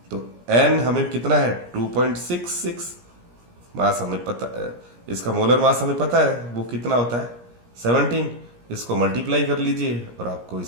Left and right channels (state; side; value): late; left; 17 ms